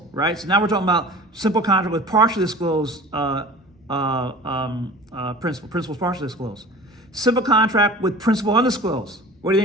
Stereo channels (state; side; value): normal; both; correlation 0.40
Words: right? So now we're talking about simple contract with partially disclosed principal. Principal's partially disclosed. Simple contract with principal undisclosed. What do you